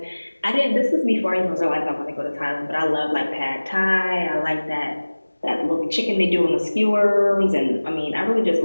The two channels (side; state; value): both; inverted; correlation -1.00